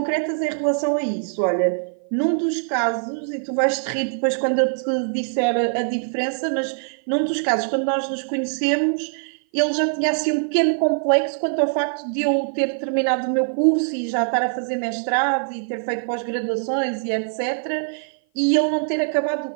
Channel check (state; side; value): silent; left; 55 dB below the other